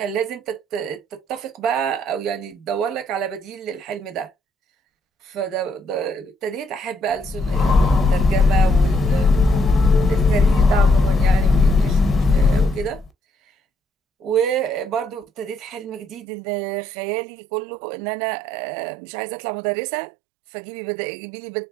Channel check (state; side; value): drops out; left; at 16.2 s